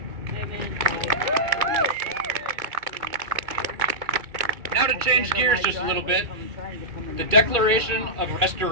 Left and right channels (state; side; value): late; left; 2.2 ms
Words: Now to change gears just a little bit, the Declaration of